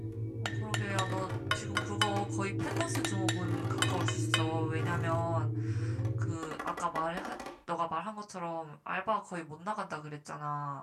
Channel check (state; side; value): identical; both; correlation 1.00